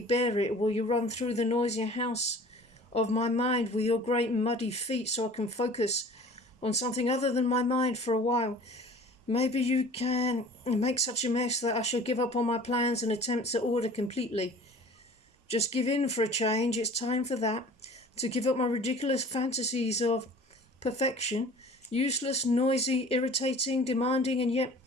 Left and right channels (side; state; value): both; normal; correlation 0.45